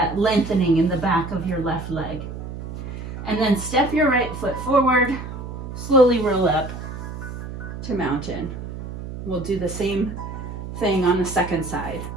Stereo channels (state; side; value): noise; right; hum, 9 dB below the sound